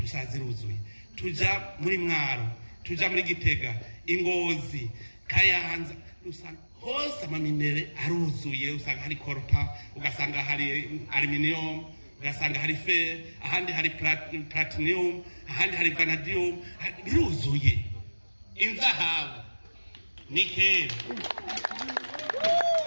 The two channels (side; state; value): both; inverted; correlation -1.00